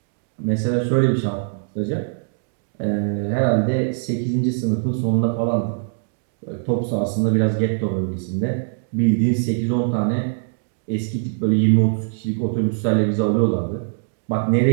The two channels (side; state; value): left; silent; digital silence